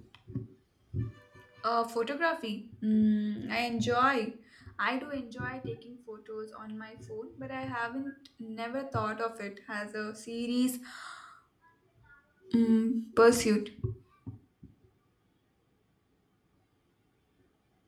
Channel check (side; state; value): both; identical; correlation 1.00